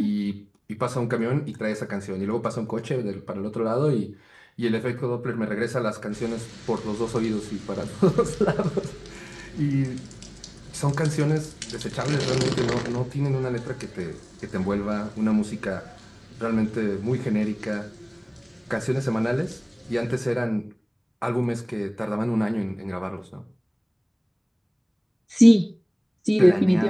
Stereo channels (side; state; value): both; identical; correlation 1.00